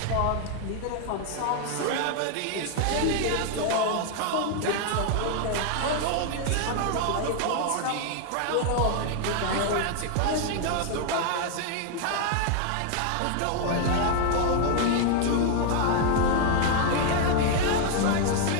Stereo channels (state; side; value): different; both; correlation 0.00